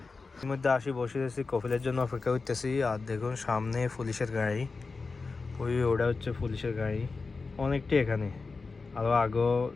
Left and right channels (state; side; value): quieter; right; 4.2 dB